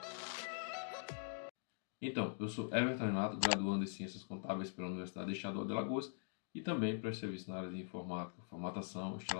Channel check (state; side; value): silent; right; digital silence